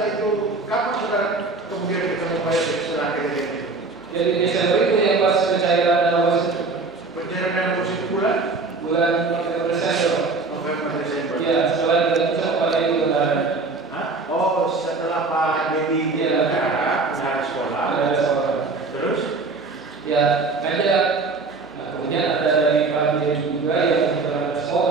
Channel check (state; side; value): quieter; left; 3.9 dB